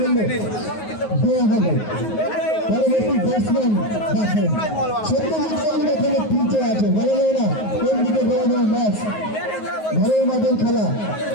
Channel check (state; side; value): late; right; 9.5 ms